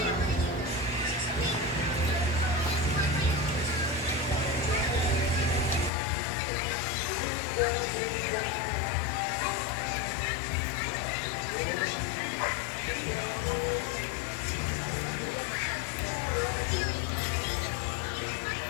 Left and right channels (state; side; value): drops out; right; at 5.9 s